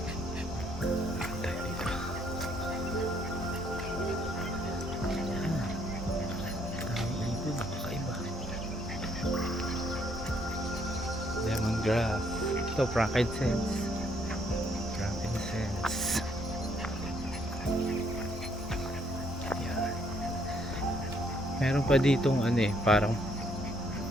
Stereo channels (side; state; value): both; normal; correlation 0.68